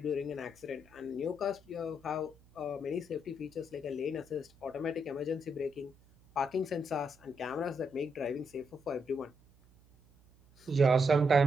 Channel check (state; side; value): noise; right; hum, 28 dB below the sound